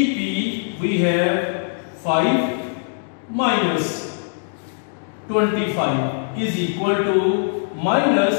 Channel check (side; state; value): right; silent; 64 dB below the other